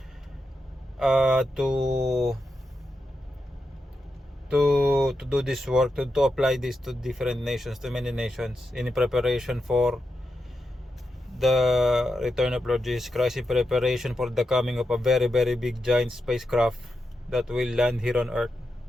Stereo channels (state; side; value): normal; both; correlation 0.87